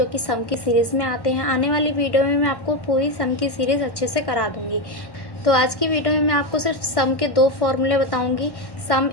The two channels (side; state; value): right; late; 1.1 ms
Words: कि सम की सीरीज़ में आते हैं। आने वाली वीडियो में मैं आपको पूरी सम की सीरीज़ अच्छे से करा दूँगी। तो आज की वीडियो में मैं आपको सिर्फ सम के दो फॉर्मूले बताऊँगी, सम